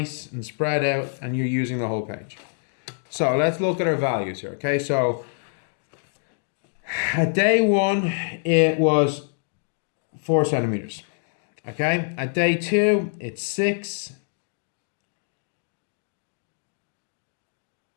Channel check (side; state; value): right; silent; 61 dB below the other